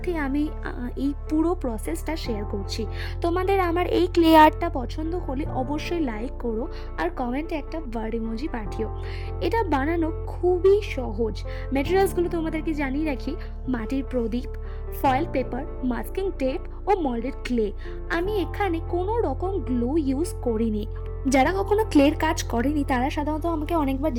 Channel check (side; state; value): both; identical; correlation 1.00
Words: আমি এই পুরো প্রসেসটা শেয়ার করছি। তোমাদের আমার এই ক্লে আর্টটা পছন্দ হলে অবশ্যই লাইক করো আর কমেন্টে একটা বার্ড ইমোজি পাঠিও। এটা বানানো খুবই সহজ। ম্যাটেরিয়ালসগুলো তোমাদেরকে জানিয়ে রাখি: মাটির প্রদীপ, ফয়েল পেপার, মাস্কিং টেপ ও মল্ডেড ক্লে। আমি এখানে কোনো রকম গ্লু ইউজ করিনি। যারা কখনো ক্লের কাজ করেনি তারা সাধারণত আমাকে অনেকবার